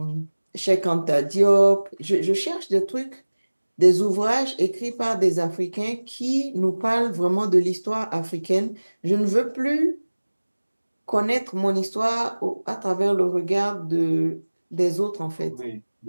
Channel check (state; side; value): inverted; both; correlation -1.00